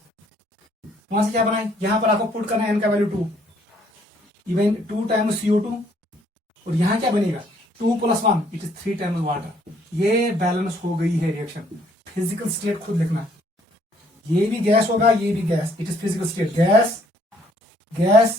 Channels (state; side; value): normal; both; correlation 0.64